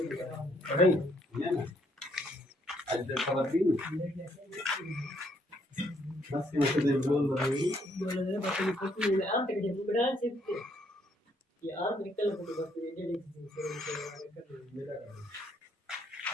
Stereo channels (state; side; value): normal; both; correlation 0.70